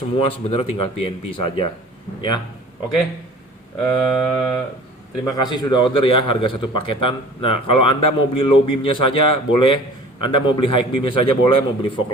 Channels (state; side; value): normal; both; correlation 0.45